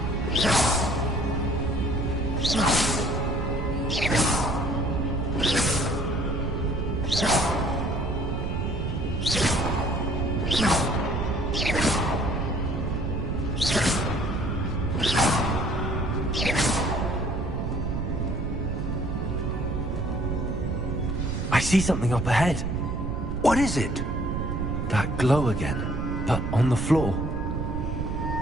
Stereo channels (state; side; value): noise; right; rumble, 2 dB below the sound